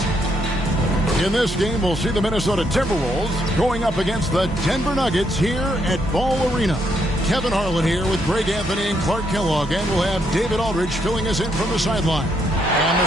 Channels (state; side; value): normal; both; correlation 0.75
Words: In this game, we'll see the Minnesota Timberwolves going up against the Denver Nuggets here at Ball Arena. Kevin Harlan here with Greg Anthony and Clark Kellogg, and we'll have David Aldridge filling us in from the sideline. And the